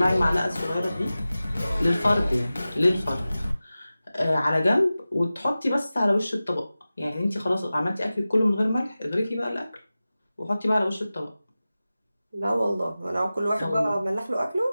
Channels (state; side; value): inverted; both; correlation -0.96